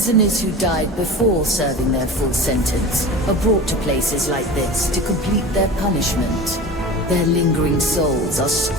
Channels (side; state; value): both; normal; correlation 0.33